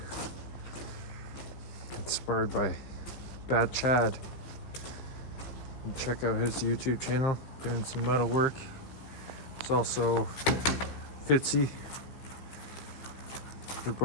inspired by Bad Chad. And check out his YouTube channel, doing some metal work. It's also Fitzy. They're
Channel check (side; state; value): right; late; 15 ms